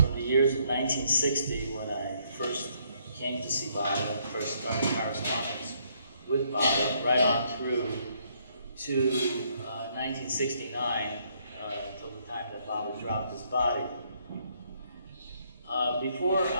the years of 1960 when I first came to see Baba and first started correspondence with Baba, right on through to 1969, till the time that Baba dropped his body. Before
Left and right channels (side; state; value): both; inverted; correlation -0.69